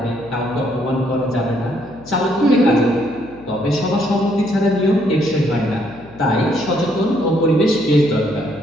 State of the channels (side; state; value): left; noise; hum, 22 dB below the sound